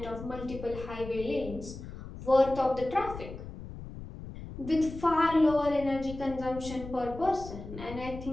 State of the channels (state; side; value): noise; left; rumble, 12 dB below the sound